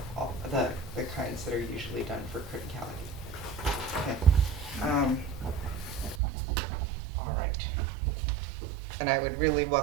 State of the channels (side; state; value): left; drops out; at 6.2 s